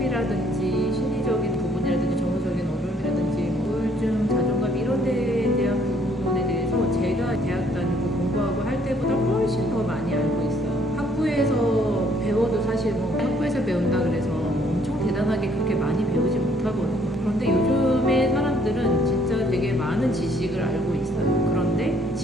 심리적인 부분이라든지 정서적인 어려움이라든지 우울증, 자존감 이런 데에 대한 부분에 대해서 제가 대학 다니고 공부하고 할 때보다 훨씬 더 많이 알고 있어요. 학부에서 배워도 사실 학부에서 배운다 그래서 엄청 대단하게 그렇게 많이 배우지 못하거든요. 그런데 요즘의 사람들은 진짜 되게 많은 지식을 알고 있어요. 그런데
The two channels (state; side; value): normal; both; correlation 0.64